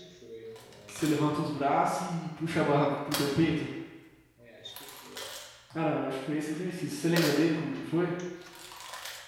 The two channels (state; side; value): identical; both; correlation 1.00